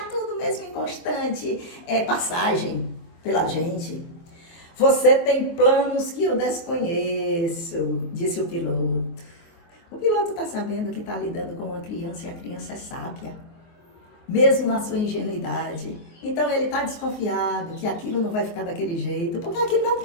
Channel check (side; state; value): right; late; 24 ms